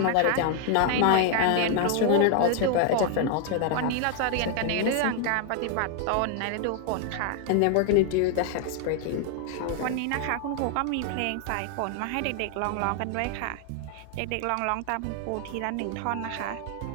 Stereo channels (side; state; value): both; different; correlation 0.00